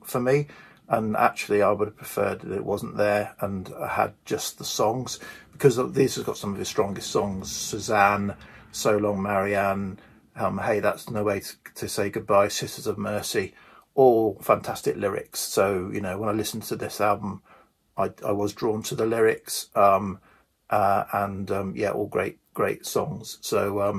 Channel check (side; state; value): both; identical; correlation 1.00